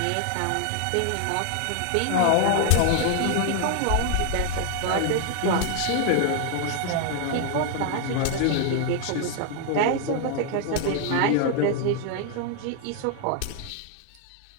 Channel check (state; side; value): different; both; correlation 0.00